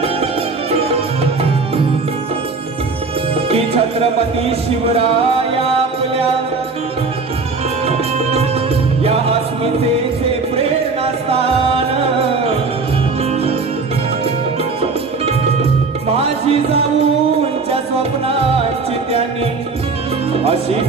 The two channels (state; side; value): quieter; left; 4.2 dB